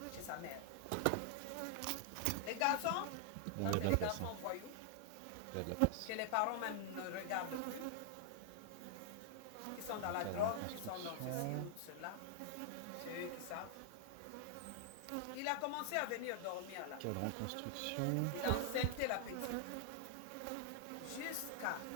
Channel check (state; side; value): different; both; correlation -0.01